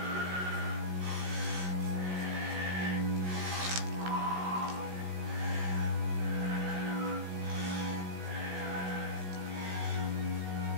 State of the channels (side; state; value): left; late; 16 ms